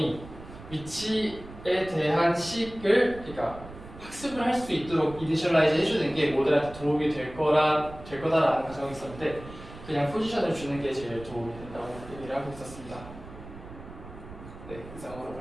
위치에 대한 식을 그러니까 학습을 할 수 있도록 이니셜라이즈 해주는 게 모델한테 도움이 될 거다라는 가정이 있었는데 그냥 포지션을 주는 게 제일 도움이 된다고 얘기를 하고 있었습니다. 네, 이상으로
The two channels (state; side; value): noise; right; rumble, 15 dB below the sound